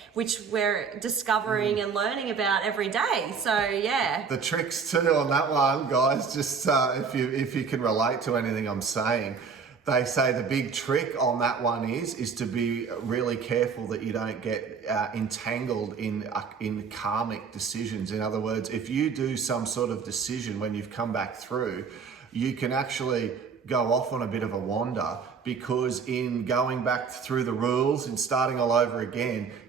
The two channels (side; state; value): left; quieter; 5.8 dB